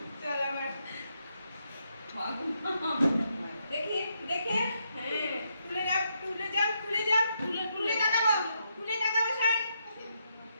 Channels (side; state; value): both; inverted; correlation -0.79